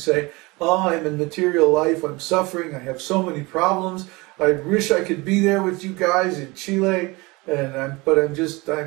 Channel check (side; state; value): left; quieter; 24.3 dB